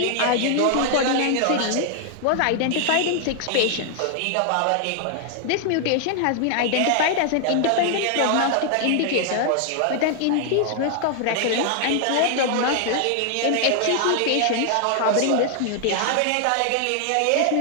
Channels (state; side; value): different; both; correlation 0.00